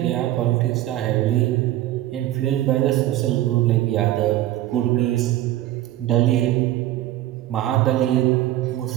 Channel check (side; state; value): left; quieter; 14.4 dB